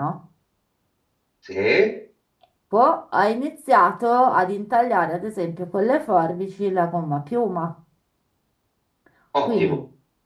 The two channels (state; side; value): identical; both; correlation 1.00